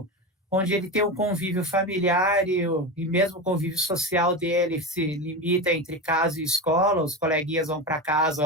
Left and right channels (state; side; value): normal; both; correlation 0.20